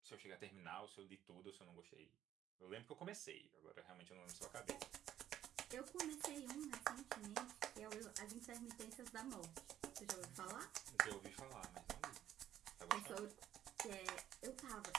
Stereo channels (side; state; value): left; quieter; 11.4 dB